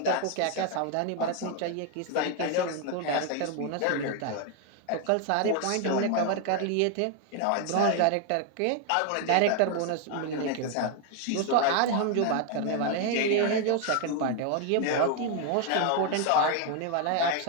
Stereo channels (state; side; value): different; both; correlation 0.01